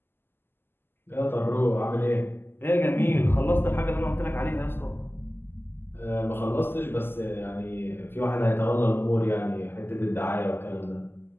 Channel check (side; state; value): right; late; 0.10 ms